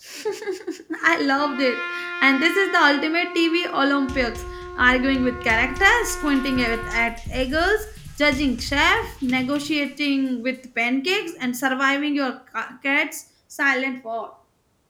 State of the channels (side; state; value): both; identical; correlation 1.00